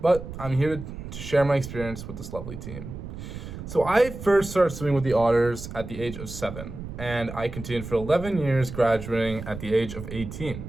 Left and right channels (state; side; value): noise; right; rumble, 10 dB below the sound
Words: But I'm here to share my experience with this lovely team. So I first started swimming with the Otters at the age of 7, and I continued for 11 years, graduating at the age of 18.